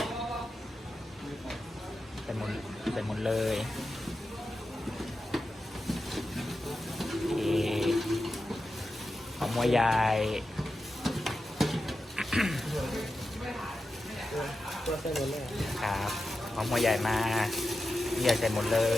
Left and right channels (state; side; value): normal; both; correlation 0.91